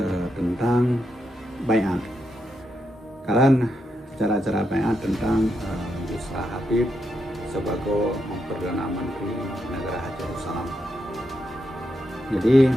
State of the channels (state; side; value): normal; both; correlation 0.82